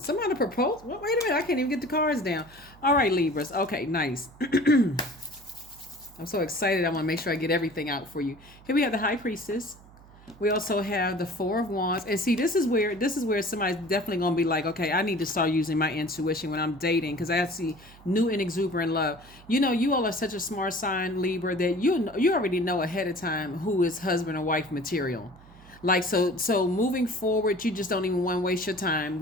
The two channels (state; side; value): noise; right; hum, 23 dB below the sound